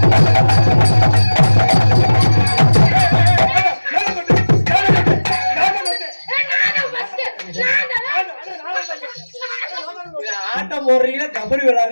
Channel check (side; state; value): both; inverted; correlation -1.00